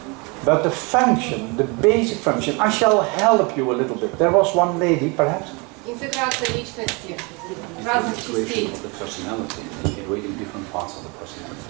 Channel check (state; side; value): quieter; left; 29.6 dB